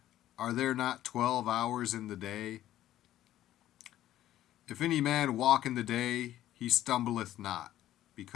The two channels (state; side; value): quieter; right; 13.2 dB